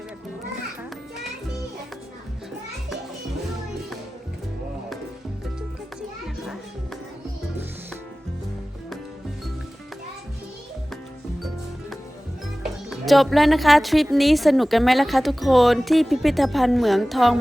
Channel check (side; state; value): both; normal; correlation 0.97